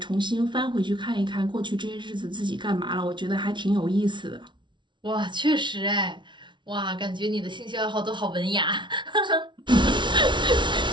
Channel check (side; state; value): left; late; 0.23 ms